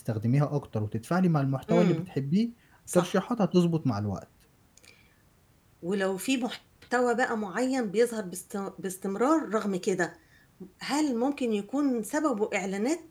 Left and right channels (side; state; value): both; identical; correlation 1.00